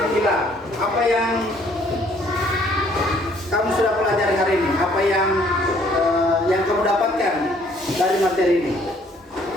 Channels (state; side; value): normal; both; correlation 0.62